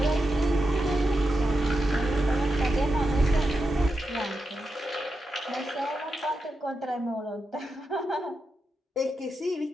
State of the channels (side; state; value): both; normal; correlation 0.88